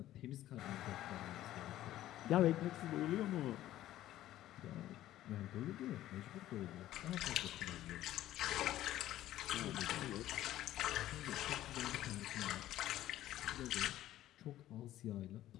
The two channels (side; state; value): right; quieter; 13.8 dB